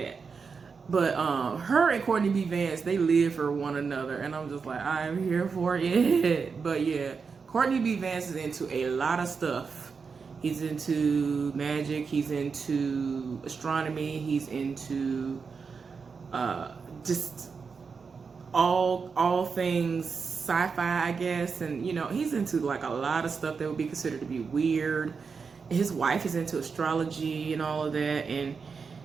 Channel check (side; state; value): left; quieter; 5.3 dB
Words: But her and Courtney B. Vance, they live for one another. And I'm just like, I'm here for it. But yeah, Courtney B. Vance is into a lot of stuff He's into magic. He's into astronomy. He's into just all things sci-fi, I guess. And you know, he's into like a lot of stuff that would be considered to be weird. His wife is into astrology and all of that. And